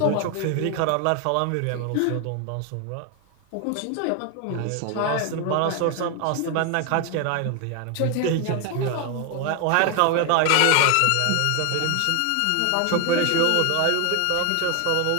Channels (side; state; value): both; different; correlation 0.01